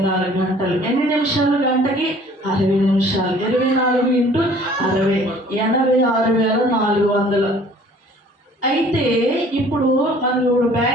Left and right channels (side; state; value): both; normal; correlation 0.53